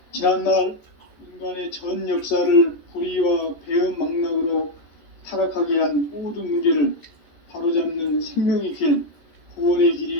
지난날 인간의 전 역사를 불의와 배은망락으로 타락하게 한 모든 문제를 바로잡는 생명의 길, 구원의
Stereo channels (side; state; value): right; late; 13 ms